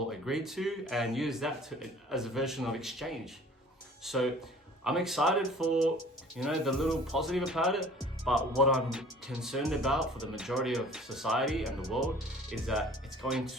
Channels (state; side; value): normal; both; correlation 0.49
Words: agree to, and use that as a version of exchange. So I'm excited for, the little positive about it, but what I'm concerned about for the majority of society and the world is that it's going